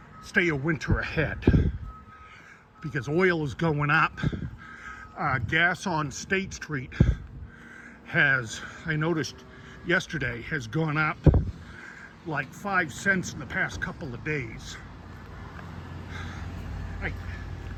stay a winter ahead because oil is going up. Gas on State Street has, I noticed yesterday, has gone up like 5 cents in the past couple of days.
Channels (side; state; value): both; identical; correlation 1.00